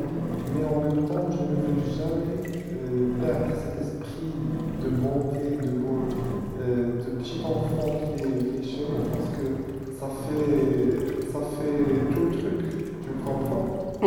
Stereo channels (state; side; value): identical; both; correlation 1.00